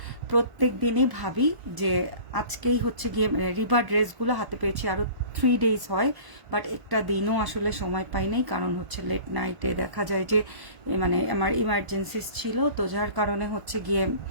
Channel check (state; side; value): late; left; 1.4 ms